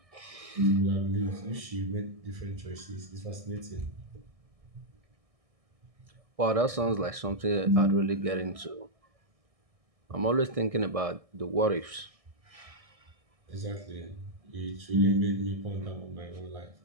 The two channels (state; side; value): late; left; 1.6 ms